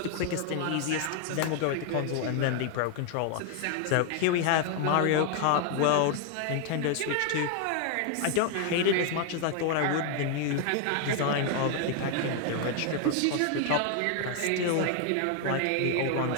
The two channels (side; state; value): both; different; correlation 0.00